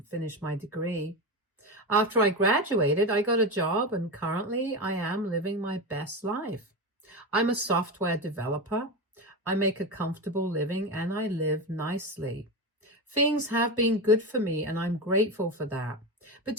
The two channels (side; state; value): both; normal; correlation 0.19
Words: finish my degree. After I graduated, I got a job, and currently I am living my best life. I'm a software developer. I make a comfortable living, and I live nicely. Things have been good for me, and I'm grateful for that. But